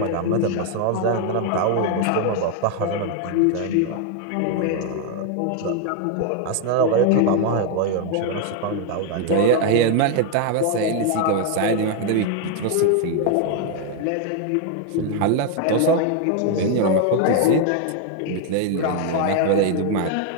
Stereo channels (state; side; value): different; both; correlation 0.01